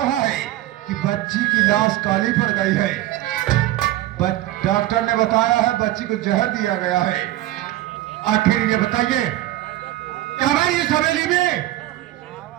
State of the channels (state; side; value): quieter; left; 15.4 dB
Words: है कि बच्ची की लाश काली पड़ गई है। डॉक्टर ने बताया है बच्ची को जहर दिया गया है। आखिर ये बताइए, हमारी इस हवेली में